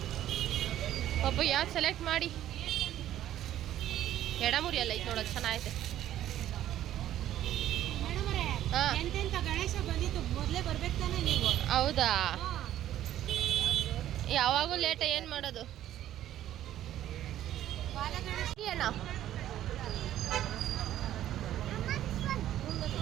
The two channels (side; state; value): left; quieter; 12.4 dB